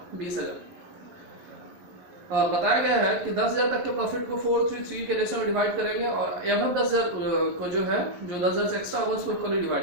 20,000। बताया गया है कि 10,000 तक के प्रॉफिट को 433 के रेशियो में डिवाइड करेंगे और एवं 10,000 को जो 10,000 से एक्स्ट्रा होगा उसको इक्वली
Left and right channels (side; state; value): left; late; 11 ms